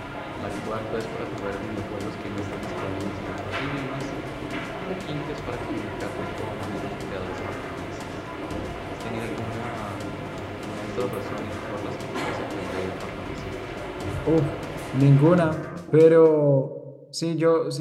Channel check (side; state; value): both; identical; correlation 1.00